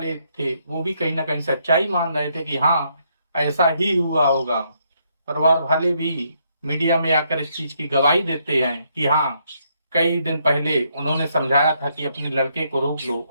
थे वो भी कहीं ना कहीं सच्चाई मान रहे थे कि हाँ, ऐसा ही हुआ होगा। परिवार वाले भी मीडिया में आकर इस चीज की गवाही देते हैं कि हाँ, कई दिन पहले उन्होंने समझाया था कि अपने लड़के को रोक लो,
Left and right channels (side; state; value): both; inverted; correlation -0.74